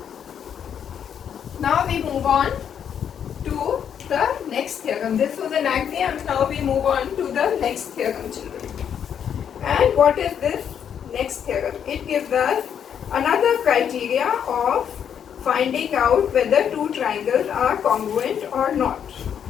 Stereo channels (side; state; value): right; quieter; 8.4 dB